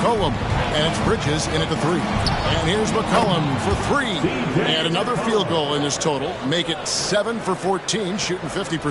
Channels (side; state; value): both; identical; correlation 1.00